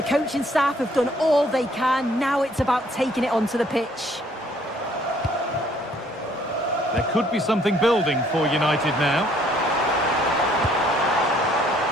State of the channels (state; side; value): normal; both; correlation 0.63